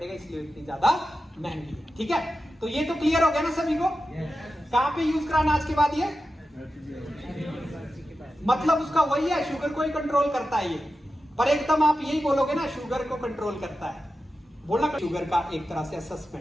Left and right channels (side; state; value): both; normal; correlation 0.91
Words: इसलिए इतनी ज्यादा महंगी है। ठीक है, तो ये तो क्लियर हो गया ना सभी को? कहां पे यूज कराना आज के बाद ये? मतलब उसका वही है, शुगर को ही कंट्रोल करता है ये। पर एकदम आप यही बोलोगे ना शुगर को कंट्रोल करता है, बोलना शुगर का एक तरह से